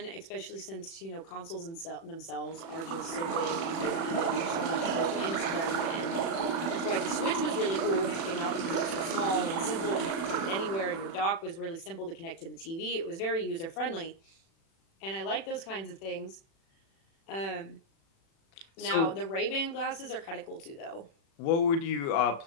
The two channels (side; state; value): right; late; 36 ms